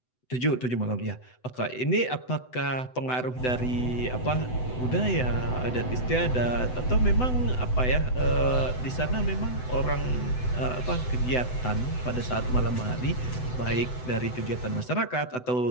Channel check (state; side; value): late; right; 7.9 ms